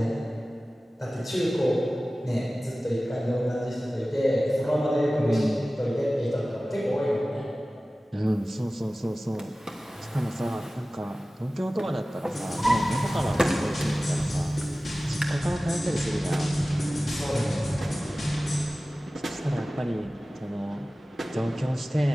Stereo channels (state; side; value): normal; both; correlation 0.97